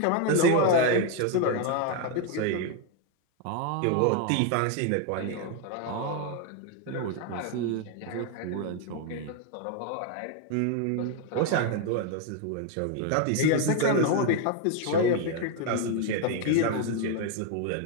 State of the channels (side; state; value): both; different; correlation 0.01